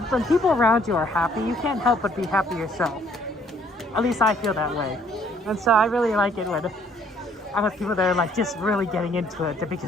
people around you are happy, you can't help but be happy yourself. At least I feel that way. And so I really like it when I'm with people that are like just really getting into it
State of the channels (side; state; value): both; normal; correlation 0.63